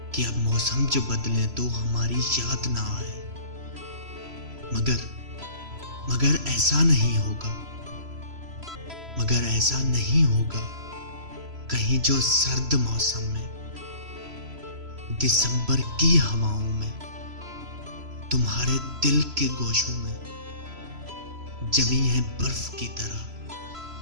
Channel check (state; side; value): late; left; 3.0 ms